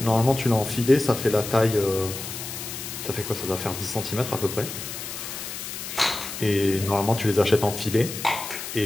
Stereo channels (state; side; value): noise; left; hiss, 8 dB below the sound